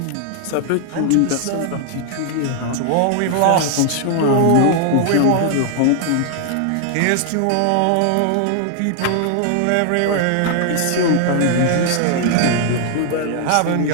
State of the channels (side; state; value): both; different; correlation 0.00